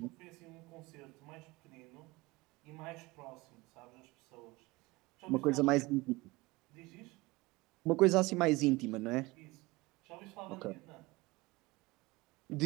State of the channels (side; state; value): left; quieter; 21.9 dB